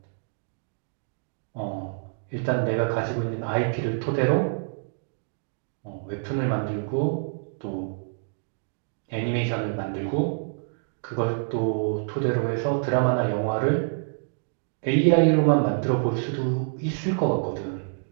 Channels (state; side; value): silent; left; digital silence